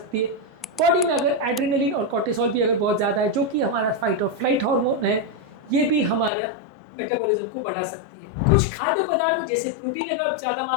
है। बॉडी में अगर एड्रेनलिन और कोर्टिसोल भी अगर बहुत ज़्यादा है, जो कि हमारा फाइट और फ्लाइट हार्मोन है, ये भी हमारा मेटाबॉलिज्म को बढ़ा सकती है। कुछ खाद्य पदार्थ जैसे प्रोटीन अगर आप ज़्यादा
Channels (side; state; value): right; drops out; at 6.3 s